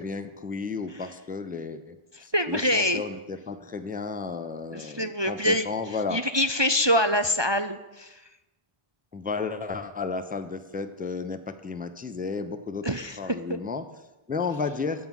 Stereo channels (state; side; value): late; left; 1.2 ms